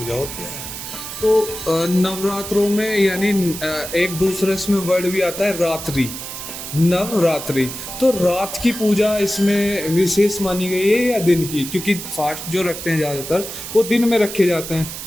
होती है। तो नवरात्रों में यानी एक दूसरे इसमें वर्ड भी आता है रात्रि, नवरात्रि, तो रात की पूजा इसमें विशेष मानी गई है या दिन की? क्योंकि फास्ट जो रखते हैं ज्यादातर वो दिन में रखे जाते हैं।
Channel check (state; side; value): noise; right; hiss, 9 dB below the sound